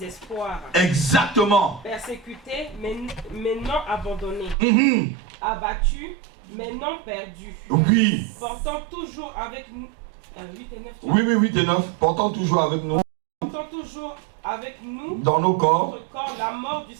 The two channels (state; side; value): drops out; left; at 4.5 s